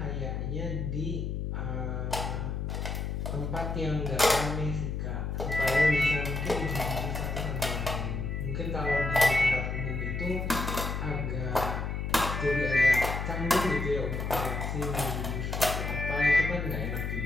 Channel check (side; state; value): left; noise; hum, 2 dB below the sound